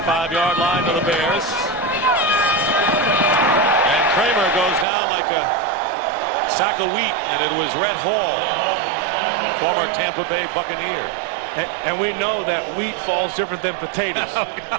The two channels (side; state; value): left; drops out; at 4.9 s